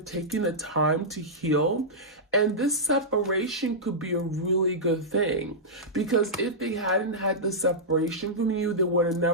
the time to heal. And this separation could be a really good thing, because if they hadn't had the separation from you, they would have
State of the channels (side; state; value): both; normal; correlation -0.12